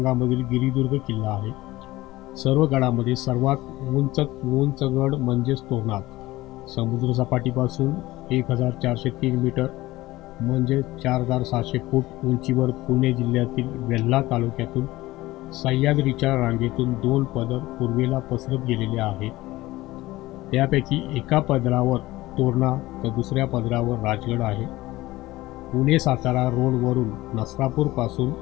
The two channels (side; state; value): right; quieter; 18.1 dB